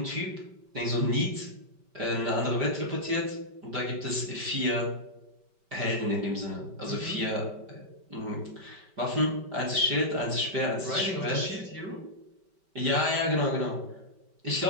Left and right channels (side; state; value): left; late; 5.2 ms